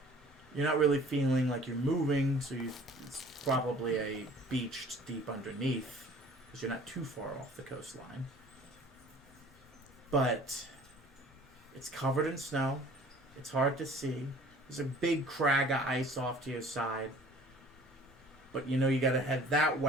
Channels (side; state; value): both; normal; correlation 0.50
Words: You're not really feeling like you're moving, so it's probably a beach deep underneath, because you're not too far off the coastline. But it's covered in snow. It's hard to see. There's a big crag of ice off to your side. But you gotta head that